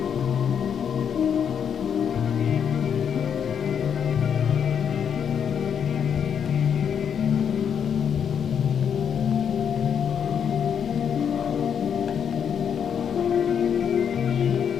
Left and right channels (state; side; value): quieter; right; 7.8 dB